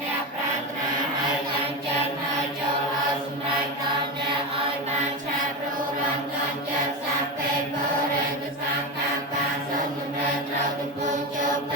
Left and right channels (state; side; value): normal; both; correlation 0.18